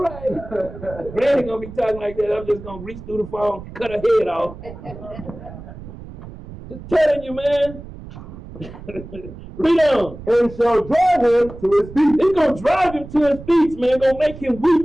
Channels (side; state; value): right; noise; rumble, 14 dB below the sound